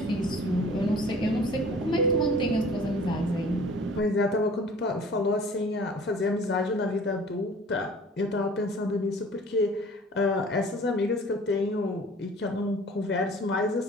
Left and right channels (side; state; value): both; normal; correlation 0.48